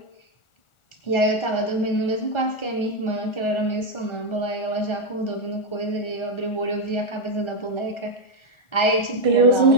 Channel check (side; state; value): right; late; 1.4 ms